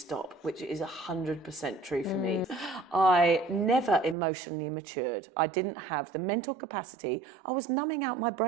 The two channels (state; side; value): drops out; left; at 4.2 s